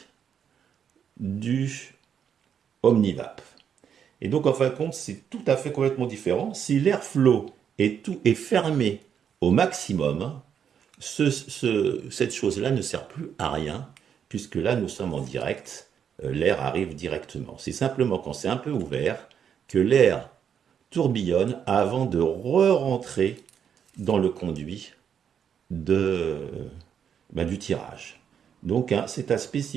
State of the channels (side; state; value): left; quieter; 8.0 dB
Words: du Omnivap. Et donc en fin de compte, c'est tout à fait complètement différent. Si l'airflow est fermé au maximum, cette chose-là ne sert plus à rien, puisque là nous sommes en direct, l'air arrive directement. C'est simplement quand c'est un peu ouvert que l'air tourbillonne avant de re-rentrer dans le conduit du tirage. Donc hein, c'est à